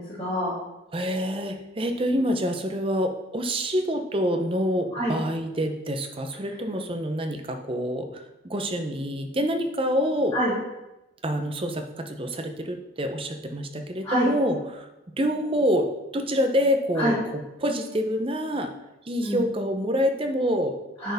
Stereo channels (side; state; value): both; normal; correlation 0.55